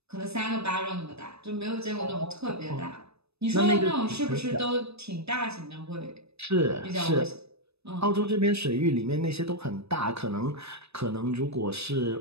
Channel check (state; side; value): late; left; 0.79 ms